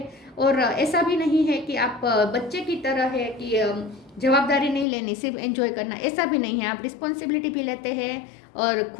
और ऐसा भी नहीं है कि आप बच्चे की तरह है कि जवाबदारी नहीं लेनी, सिर्फ एंजॉय करना, ऐसा भी नहीं है। आप रिस्पॉन्सिबिलिटी भी लेते हैं और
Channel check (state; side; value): drops out; right; at 4.9 s